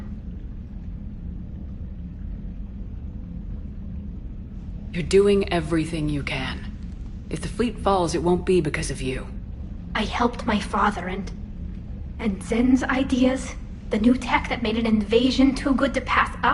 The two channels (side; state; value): both; identical; correlation 1.00